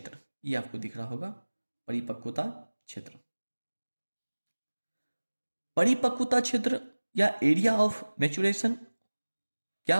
ये आपको दिख रहा होगा परिपक्वता क्षेत्र। परिपक्वता क्षेत्र या एरिया ऑफ मैच्योरेशन क्या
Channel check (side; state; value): both; inverted; correlation -1.00